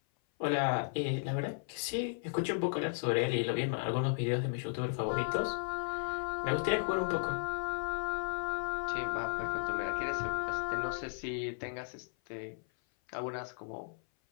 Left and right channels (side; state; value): right; silent; 54 dB below the other